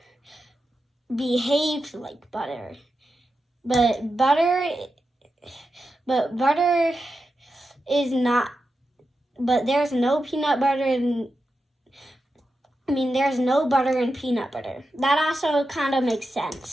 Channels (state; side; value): normal; both; correlation 0.89